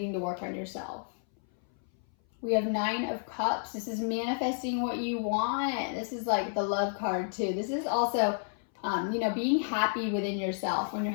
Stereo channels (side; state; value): right; silent; 57 dB below the other